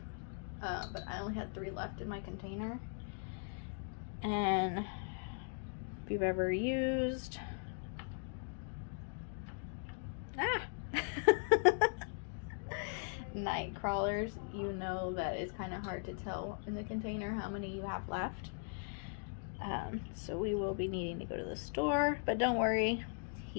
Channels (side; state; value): right; silent; 52 dB below the other